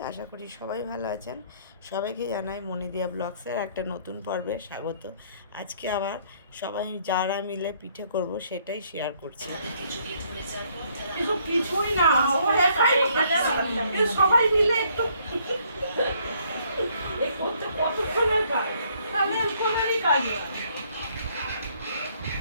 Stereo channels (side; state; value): both; inverted; correlation -0.66